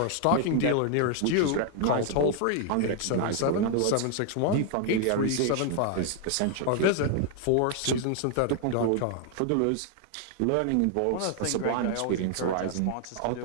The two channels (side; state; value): both; different; correlation 0.00